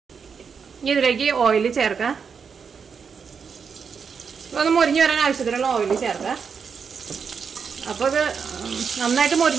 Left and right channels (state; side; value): quieter; left; 6.2 dB